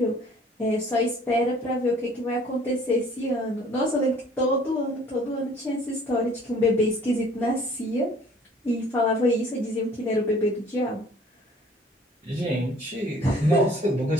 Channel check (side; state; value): both; normal; correlation 0.54